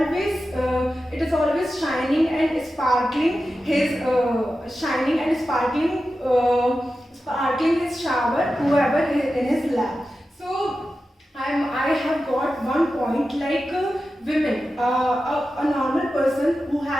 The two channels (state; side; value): normal; both; correlation 0.92